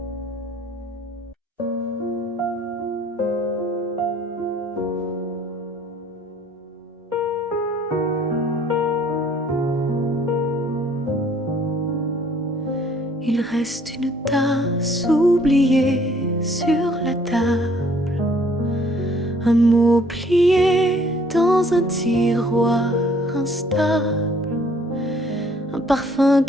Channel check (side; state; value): both; normal; correlation 0.59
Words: Il reste une tasse oubliée sur la table, un mot plié dans un tiroir instable, un parfum